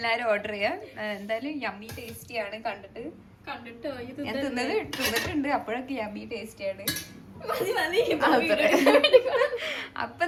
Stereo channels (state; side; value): identical; both; correlation 1.00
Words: ഓർഡർ ചെയ്യാം. എന്തായാലും യമ്മി ടേസ്റ്റിയാണ്. കണ്ടിട്ട് ഞാൻ തിന്നിട്ടുണ്ട്. അപ്പോഴൊക്കെ യമ്മി ടേസ്റ്റിയാണ്. അപ്പൊ